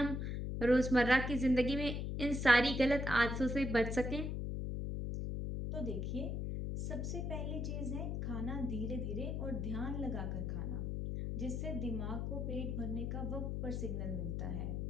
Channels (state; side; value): noise; left; hum, 2 dB below the sound